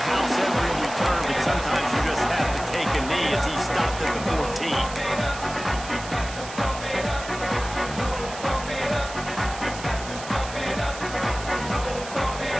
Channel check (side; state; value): right; noise; hiss, 12 dB below the sound